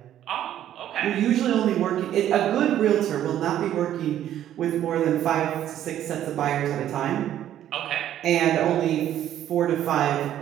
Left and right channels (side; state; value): left; quieter; 11.5 dB